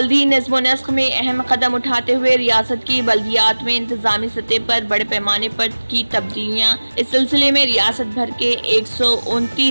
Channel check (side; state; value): both; inverted; correlation -1.00